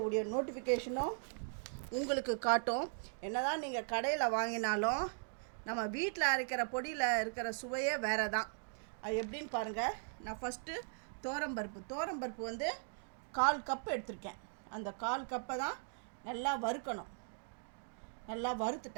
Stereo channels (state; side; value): silent; left; digital silence